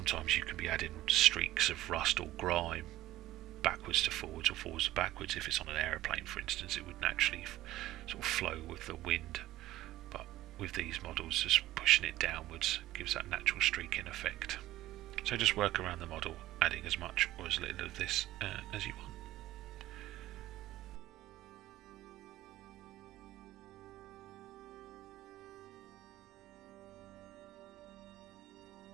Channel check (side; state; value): left; quieter; 15.4 dB